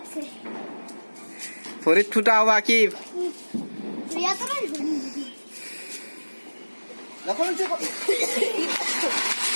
ভৰিত ফুটা হব কি প্রিয়া তো না रखो नीचे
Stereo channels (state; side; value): inverted; both; correlation -1.00